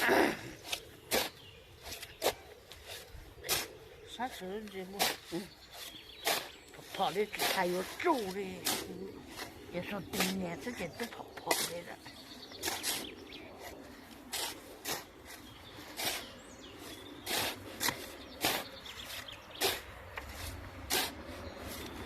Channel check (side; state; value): both; identical; correlation 1.00